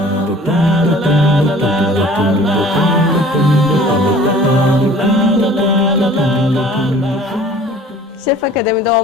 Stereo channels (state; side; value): normal; both; correlation 0.49